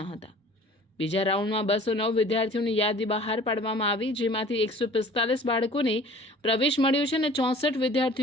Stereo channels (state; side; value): normal; both; correlation 0.48